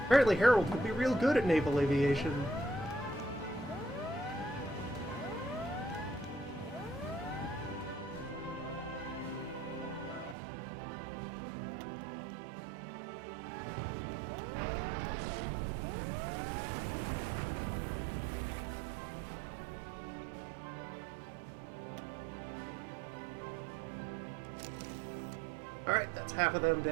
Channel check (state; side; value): drops out; left; at 10.4 s